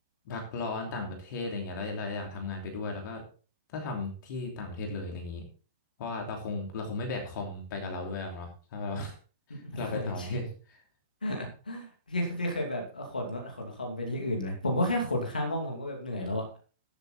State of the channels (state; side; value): inverted; both; correlation -0.50